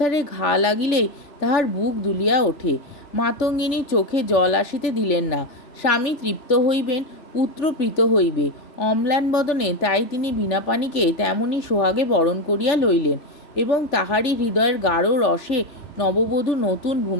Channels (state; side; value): late; right; 3.4 ms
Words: ঘা লাগিলেই তাহার বুক দুলিয়া ওঠে। মাতঙ্গিনী চোখে জল আসিতে দিলেন না। স্বামী তৃপ্ত হইবেন, পুত্র প্রীত হইবে, অম্লান বদনে তাই তিনি বীণাপাণিকে তেমনি সোহাগে বরণ করিয়া লইলেন এবং তাহারই হৃদয়ের গাঢ় রসে নববধূ নতুন